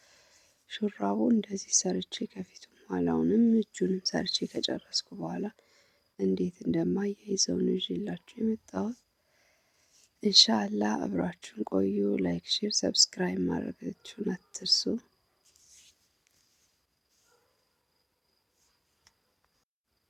ሹራቡ እንደዚህ ሰርቼ ከፊቱም ኋላውንም እጁንም ሰርቼ ከጨረስኩ በኋላ እንዴት እንደማያይዘው ነው ይዤላችሁ የመጣሁት። ኢንሻአላህ አብራችሁን ቆዩ። ላይክ፣ ሼር፣ ሰብስክራይብ ማድረጋችሁን አትርሱ።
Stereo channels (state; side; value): identical; both; correlation 1.00